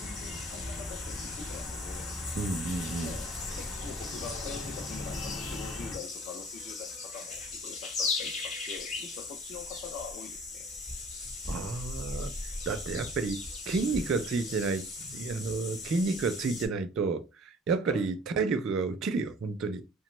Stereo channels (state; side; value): normal; both; correlation 0.50